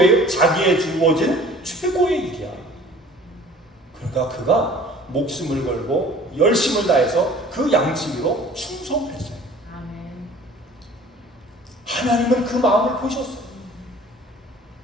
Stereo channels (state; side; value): normal; both; correlation 0.49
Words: 자기의 주어진 최고의 일이야. 그러니까 그가 목숨을 걸고 열심을 다해서 그 양치기로 충성을 했어요. 하나님은 그 마음을 보셨어요.